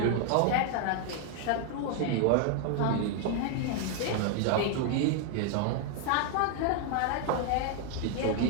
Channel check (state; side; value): different; both; correlation 0.00